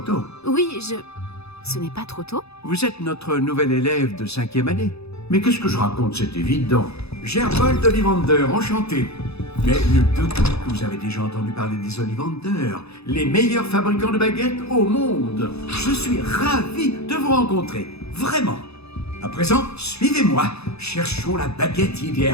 Oui, Ce n'est pas trop tôt? Vous êtes notre nouvel élève de 5e année. Mais qu'est-ce que je raconte, c'est évident. Gerbold Ollivander, enchanté. Mais nul doute que vous avez déjà entendu parler des Ollivander, les meilleurs fabricants de baguettes au monde. Je suis ravi de vous rencontrer, vraiment. À présent, suivez-moi. Cherchons la baguette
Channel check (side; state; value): right; late; 0.79 ms